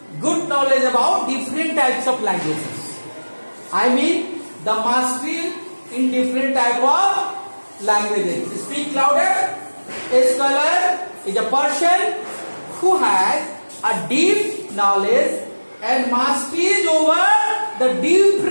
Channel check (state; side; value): inverted; both; correlation -1.00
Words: good knowledge about different types of languages. I mean the mastery in different type of languages. Speak louder. A scholar is a person who has a deep knowledge and mastery over the